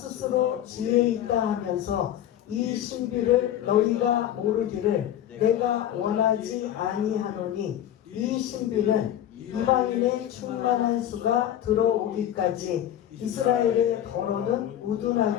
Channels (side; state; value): right; quieter; 11.3 dB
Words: 지혜 있다 하면서 이 신비를 너희가 모르기를 내가 원하지 아니하노니, 이 신비는 이방인의 충만한 수가 들어오기까지 이스라엘의 더러는